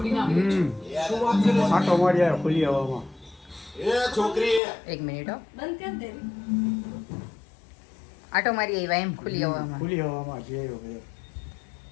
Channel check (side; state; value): right; drops out; at 4.6 s